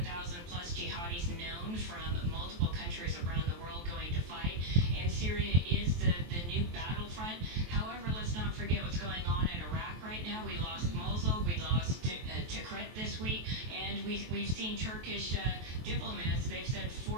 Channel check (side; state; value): left; late; 23 ms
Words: plus jihadis known from multiple countries around the world going to fight, and Syria is the new battlefront. However, let's not forget what's going on in Iraq right now. We lost Mosul, we lost Tikrit this week, and we've seen Turkish diplomats. They've said